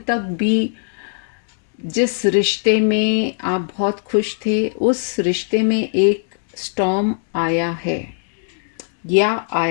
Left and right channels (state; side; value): silent; right; digital silence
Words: तक भी जिस रिश्ते में आप बहुत खुश थे, उस रिश्ते में एक स्टॉर्म आया है या